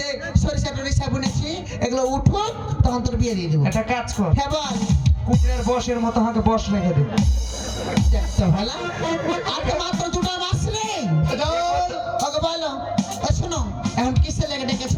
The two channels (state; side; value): identical; both; correlation 1.00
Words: সরিষা টরিষা বুনেছি এগুলো উঠুক তখন তোর বিয়ে দিয়ে দেবো। একটা কাজ কর হ্যাঁ বল। কুকুরের বসের মতো হাঁকে বস রেখে দে দেখতে ভালো আর তো মাত্র 2টা মাস নেই। যাও। ওকে বলো ও শোনো এখন কিসে লেগে ডেকেছো